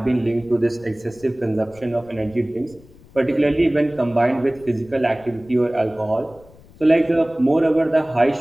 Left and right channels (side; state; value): left; noise; rumble, 25 dB below the sound